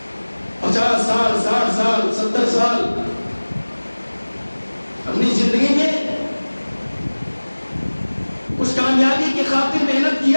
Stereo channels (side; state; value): both; inverted; correlation -1.00